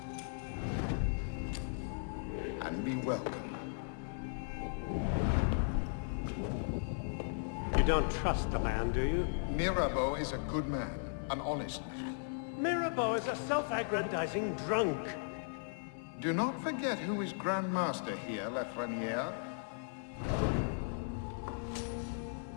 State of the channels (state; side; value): silent; right; 53 dB below the other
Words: and be welcome. You don't trust the man, do you? Mirabeau is a good man, an honest man. Mirabeau is a self-aggrandizing drunk. Do not forget who is Grand Master here, Lafreniere.